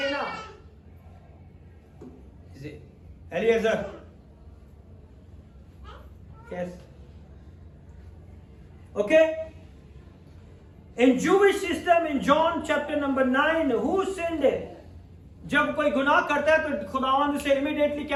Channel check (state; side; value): identical; both; correlation 1.00